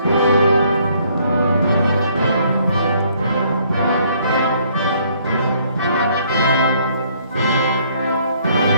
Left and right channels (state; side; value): inverted; both; correlation -0.65